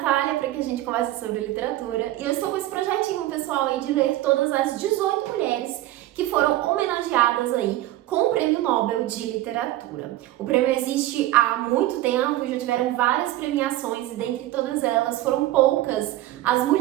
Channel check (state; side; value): quieter; left; 15.5 dB